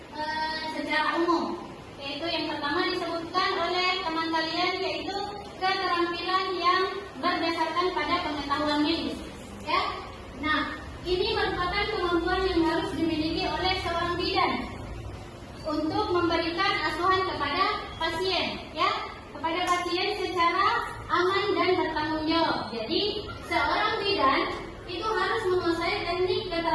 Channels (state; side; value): identical; both; correlation 1.00